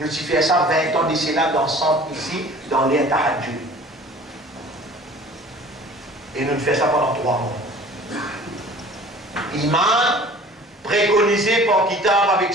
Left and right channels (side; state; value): both; normal; correlation 0.47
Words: avons fait ça 20 ans de cela dans le centre ici, dans l'air Tahajjud. Et nous faisons ça pendant 3 mois. Imam préconisé par Kitab avec